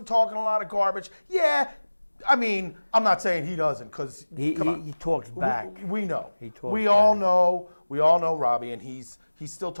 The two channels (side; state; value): both; inverted; correlation -1.00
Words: talking a lot of garbage. Yeah, I mean, I'm not saying he doesn't, because come on, he talks back. we know. He talks We all back. know. We all know Robbie, and he's still